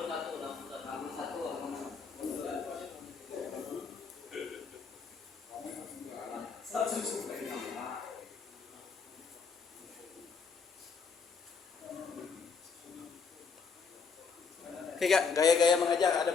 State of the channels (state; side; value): quieter; right; 5.3 dB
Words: Oke kak, gaya-gaya mengajar ada